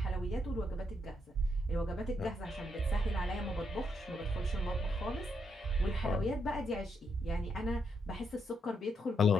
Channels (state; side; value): normal; both; correlation 0.79